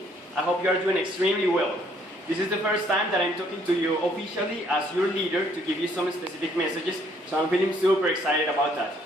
I hope you are doing extremely well. This is the first time that I'm talking to you officially as your leader to give you some specific messages, so I'm feeling super excited about that.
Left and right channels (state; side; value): normal; both; correlation 0.65